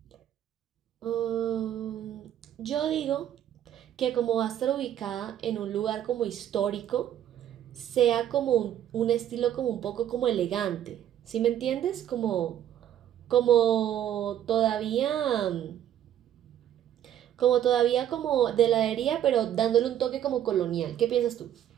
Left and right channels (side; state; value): left; quieter; 10.9 dB